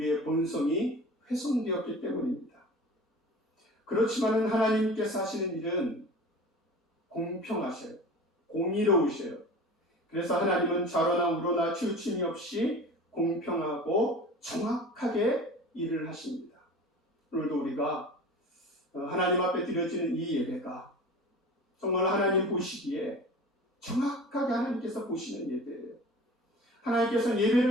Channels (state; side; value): normal; both; correlation 0.38